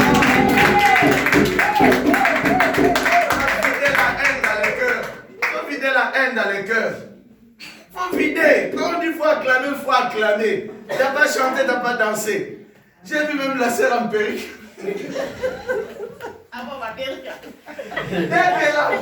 La haine dans les cœurs. Il faut vider. Quand on dit qu'il faut acclamer, il faut acclamer. Tu n'as pas chanté, tu n'as pas dansé. J'ai vu même la sœur en perruque. Ah bon, ma perruque. Dès qu'elle a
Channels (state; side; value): identical; both; correlation 1.00